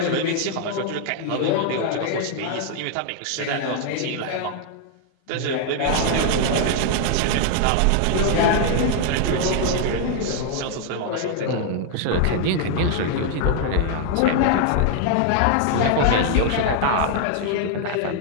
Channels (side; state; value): both; different; correlation 0.00